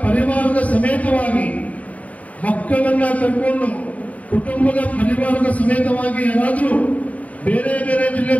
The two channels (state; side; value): late; right; 0.070 ms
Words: ಪರಿವಾರದ ಸಮೇತವಾಗಿ ಮಕ್ಕಳನ್ನ ಕರ್ಕೊಂಡು ಕುಟುಂಬದ ಪರಿವಾರದ ಸಮೇತವಾಗಿ ಯಾರಾದರೂ ಬೇರೆ ಬೇರೆ ಜಿಲ್ಲೆ,